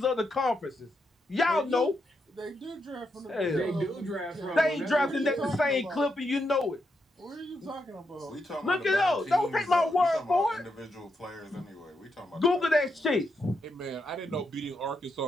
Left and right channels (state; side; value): normal; both; correlation 0.82